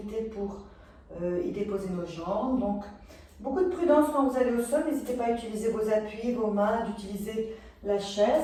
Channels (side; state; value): both; identical; correlation 1.00